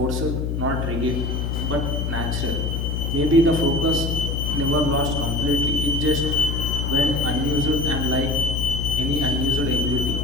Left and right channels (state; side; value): noise; left; hum, 1 dB below the sound